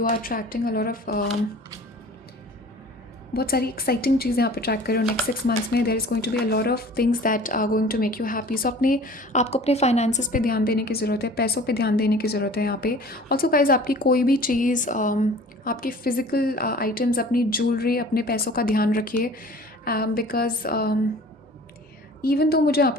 are attracting a lot of बहुत सारी exciting चीज़ें आप अट्रैक्ट कर रहे हो नेक्स्ट 6 मंथ्स में। There is going to be a lot of things that are going to make you happy. So आपको अपने फाइनेंसेस पे ध्यान देने की ज़रूरत है, पैसों पे ध्यान देने की ज़रूरत है यहाँ पे। ऑल्सो गाइज आपकी कोई भी चीज़, आपकी फ़िज़िकल आइटम्स, अपनी ज्वेलरी, अपने पैसों का ध्यान रखिए बिकॉज इवन तो मुझे यहाँ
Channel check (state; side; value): normal; both; correlation 0.45